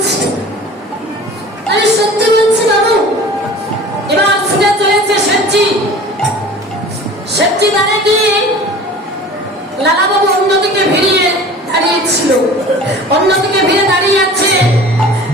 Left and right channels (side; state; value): both; normal; correlation 0.42